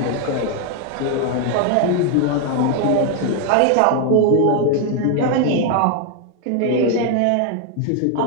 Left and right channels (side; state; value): both; different; correlation 0.00